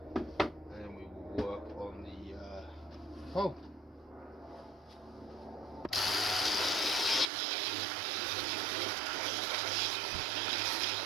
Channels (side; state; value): left; drops out; at 7.2 s